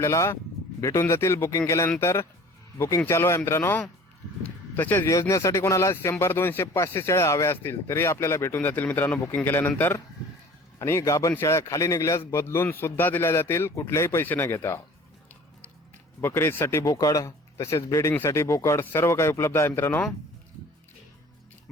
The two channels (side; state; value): both; normal; correlation 0.46